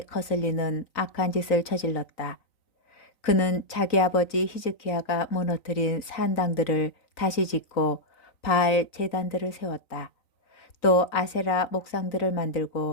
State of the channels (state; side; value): late; right; 3.9 ms